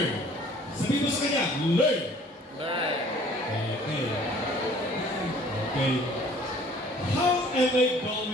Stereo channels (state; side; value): normal; both; correlation 0.54